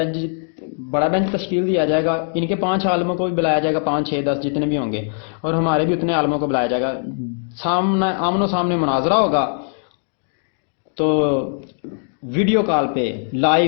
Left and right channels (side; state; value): right; silent; digital silence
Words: بینچ تشکیل دیا جائے گا. ان کے 5 عالموں کو بھی بلایا جائے گا، 5 6 10 جتنے بھی ہوں گے، اور ہمارے بھی اتنے عالموں کو بلایا جائے گا. آمن و سامنے مناظرہ ہوگا. تو ویڈیو کال پہ